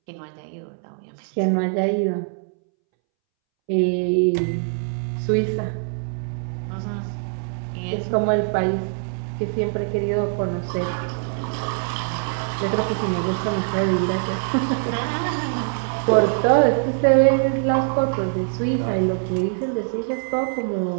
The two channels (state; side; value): silent; left; 63 dB below the other